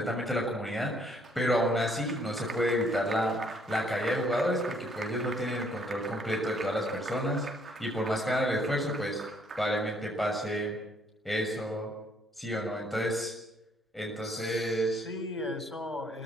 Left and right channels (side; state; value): both; normal; correlation 0.66